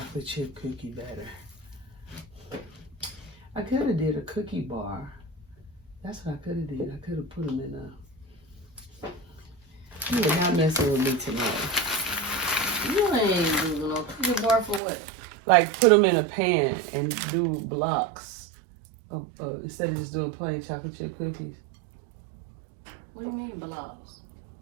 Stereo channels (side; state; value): left; drops out; at 14.8 s